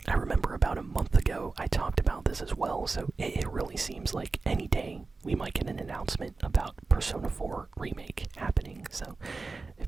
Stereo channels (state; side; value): quieter; left; 3.9 dB